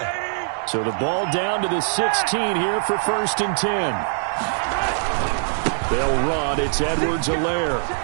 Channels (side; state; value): left; silent; digital silence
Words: So the ball down to the 16 here for 1st and 10. They'll run. It's Edwards-Helaire.